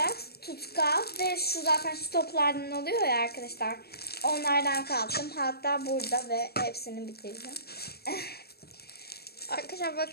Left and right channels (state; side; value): late; right; 0.46 ms